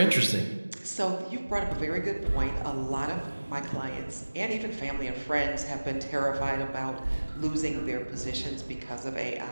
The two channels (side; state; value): both; inverted; correlation -1.00